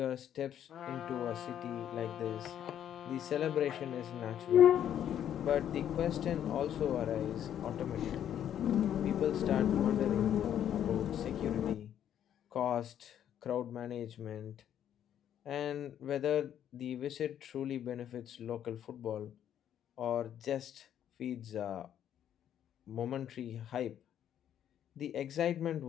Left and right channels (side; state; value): right; quieter; 10.1 dB